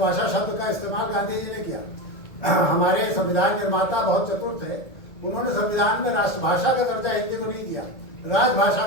शब्द का इस्तेमाल गांधी जी ने किया। हमारे संविधान निर्माता बहुत चतुर थे, उन्होंने संविधान में राष्ट्रभाषा का दर्जा हिंदी को नहीं दिया, राजभाषा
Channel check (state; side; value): late; right; 1.8 ms